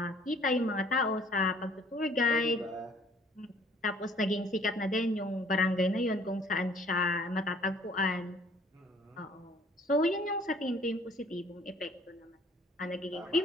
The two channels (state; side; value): normal; both; correlation 0.57